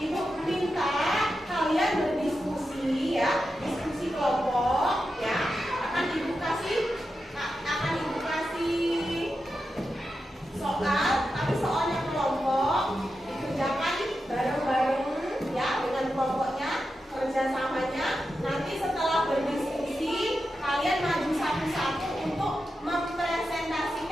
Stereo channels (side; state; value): both; normal; correlation 0.89